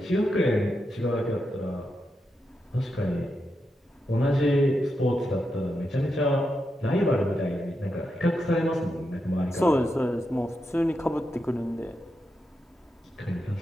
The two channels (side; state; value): both; normal; correlation 0.86